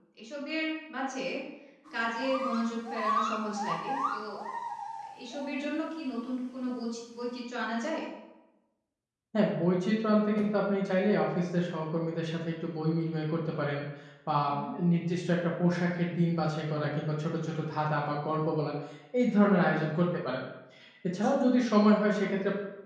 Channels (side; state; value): both; identical; correlation 1.00